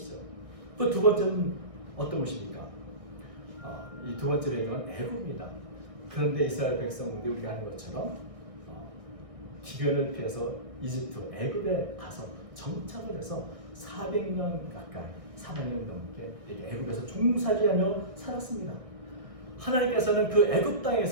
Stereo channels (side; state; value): left; late; 1.6 ms